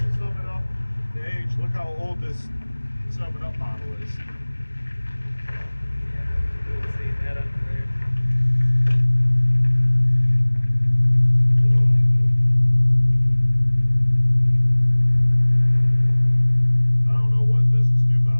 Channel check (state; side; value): inverted; both; correlation -1.00